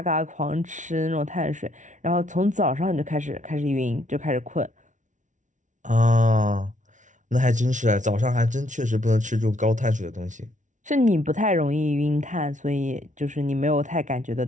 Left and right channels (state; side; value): late; left; 0.37 ms